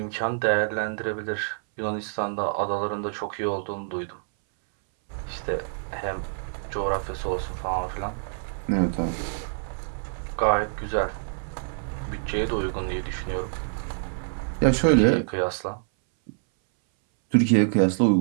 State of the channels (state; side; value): silent; left; 61 dB below the other